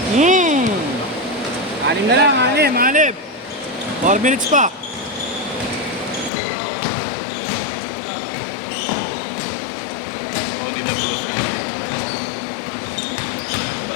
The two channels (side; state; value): right; drops out; at 6.3 s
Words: Anim na lang, anim. 4 minutes pa.